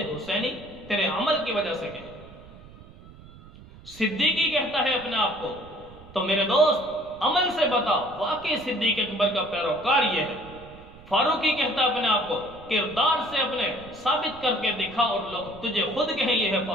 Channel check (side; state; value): right; noise; rumble, 20 dB below the sound